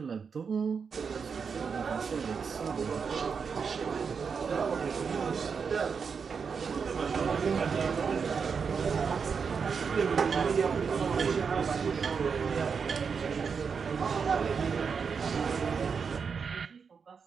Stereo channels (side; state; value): left; quieter; 5.9 dB